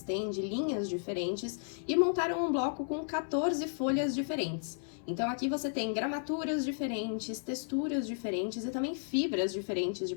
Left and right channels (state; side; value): silent; right; 55 dB below the other